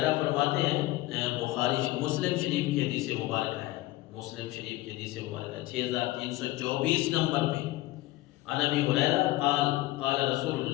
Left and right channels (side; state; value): right; quieter; 17.7 dB